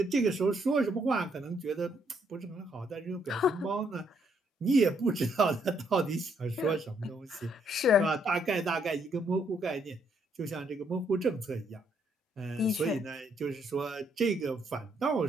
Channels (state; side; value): normal; both; correlation 0.72